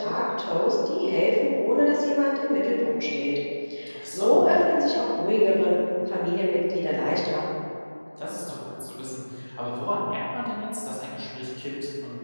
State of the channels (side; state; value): both; inverted; correlation -1.00